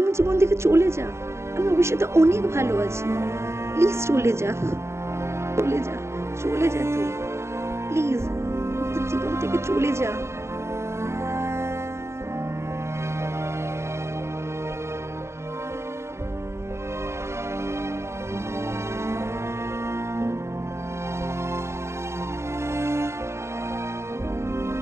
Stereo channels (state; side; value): late; left; 0.13 ms